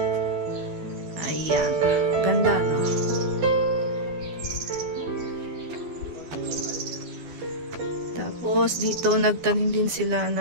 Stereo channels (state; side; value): late; left; 12 ms